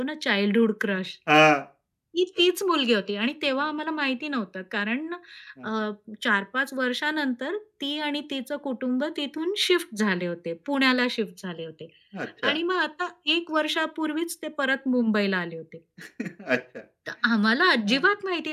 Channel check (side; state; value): both; identical; correlation 1.00